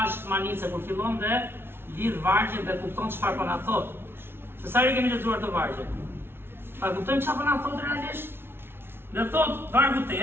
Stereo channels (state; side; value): late; left; 0.11 ms